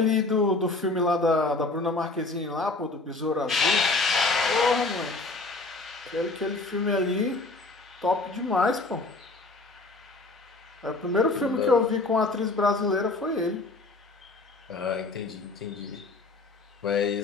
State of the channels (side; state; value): right; quieter; 3.3 dB